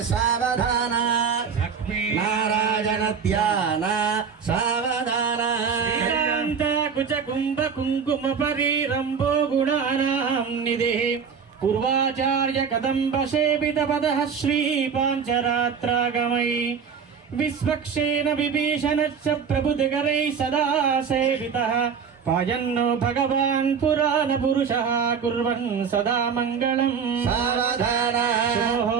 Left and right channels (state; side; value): quieter; left; 6.5 dB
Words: सावधान లక్ష్మీ नारायण ध्यान सावधान శ్రీకాంత కుచ కుంభ కుంకుమ పరిరంభో గుణానాం నిధి పూర్వాచార్య కదంబ సేవిత పద శ్రీ పాంచరాత్రాగమై విశ్వక్షేణ విభీషణ ప్రభుదిగరై సదా సేవితః పాయన్నో భగవాన్ పురాణ పురుషః కుర్వన్ సదా మంగళం सावधान